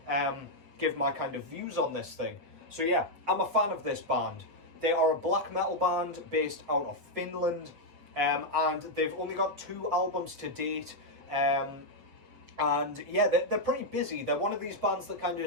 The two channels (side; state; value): left; late; 7.3 ms